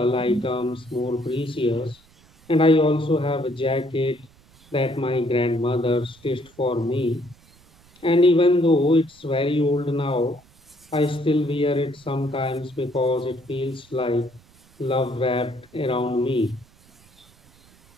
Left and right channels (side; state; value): right; noise; rumble, 29 dB below the sound